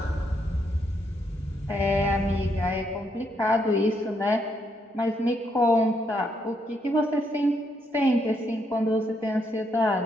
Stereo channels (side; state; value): both; normal; correlation 0.76